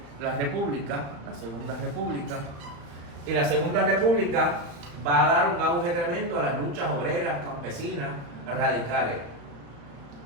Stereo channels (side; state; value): left; late; 35 ms